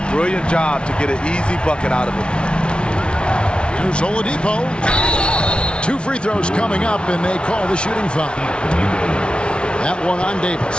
brilliant job to get an easy bucket out of it. Here's Oladipo. 2 free throws coming up, and they call the shooting foul. That one on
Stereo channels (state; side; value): late; right; 0.057 ms